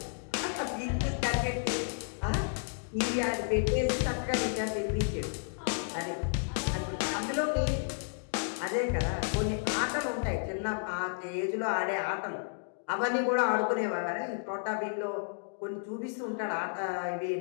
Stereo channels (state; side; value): silent; right; digital silence